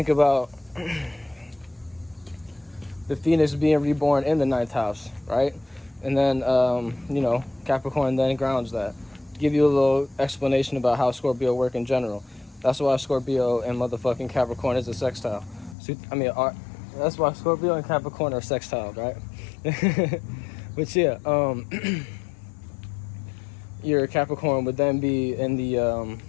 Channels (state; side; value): drops out; right; at 15.8 s